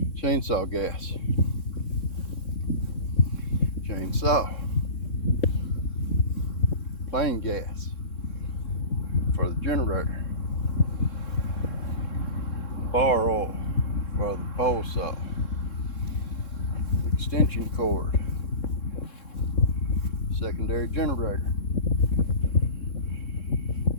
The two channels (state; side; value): late; right; 3.7 ms